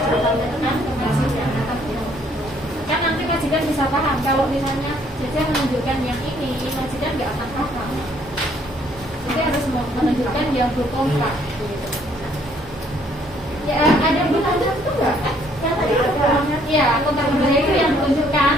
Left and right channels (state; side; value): normal; both; correlation 0.65